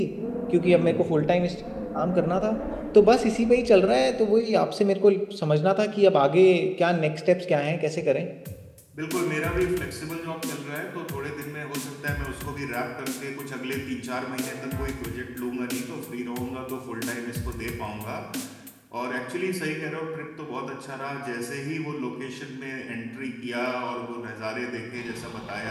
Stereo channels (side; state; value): both; identical; correlation 1.00